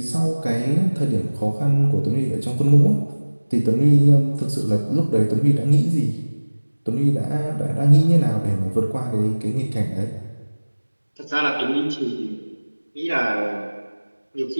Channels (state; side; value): inverted; both; correlation -1.00